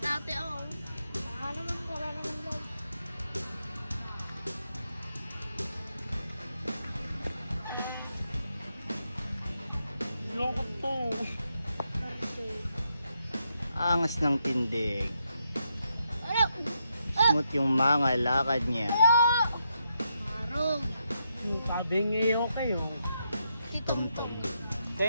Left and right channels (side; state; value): both; inverted; correlation -0.81